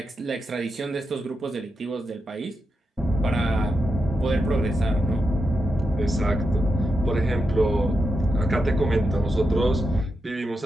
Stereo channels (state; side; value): normal; both; correlation 0.86